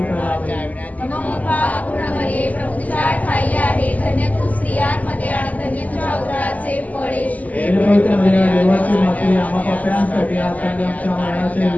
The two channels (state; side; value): late; right; 0.076 ms